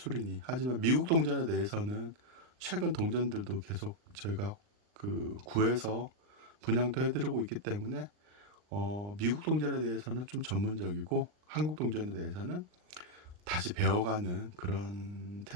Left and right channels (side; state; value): left; late; 39 ms